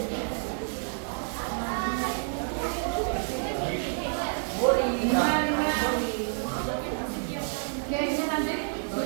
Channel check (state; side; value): silent; left; digital silence